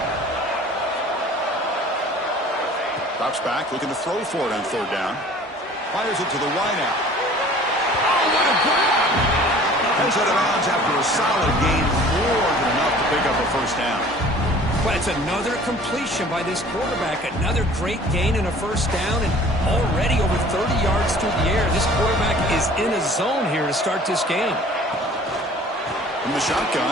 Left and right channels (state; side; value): normal; both; correlation 0.48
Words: Drops back, looking to throw for it on third down. Fires it to the wideout. Oh, what a grab! Heads out of bounds after a solid gain, more than enough to pick up a first down. Well, it's another completion by this quarterback. Another great gain and a first down, and already over 30 yards through the air. This quarterback is in a zone here to start this game. From the